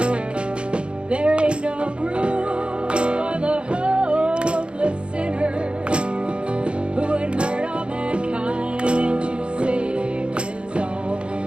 There ain't no room for the hopeless sinner who would hurt all mankind to save his own.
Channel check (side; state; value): left; late; 0.056 ms